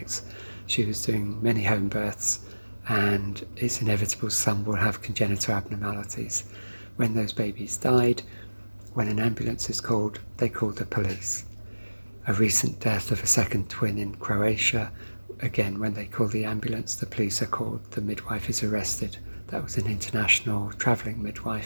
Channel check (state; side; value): inverted; both; correlation -1.00